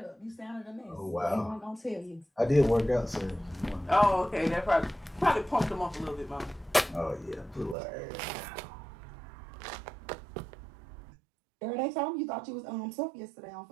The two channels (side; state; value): left; drops out; at 7.8 s